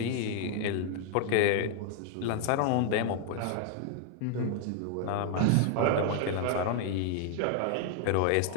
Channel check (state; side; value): different; both; correlation 0.00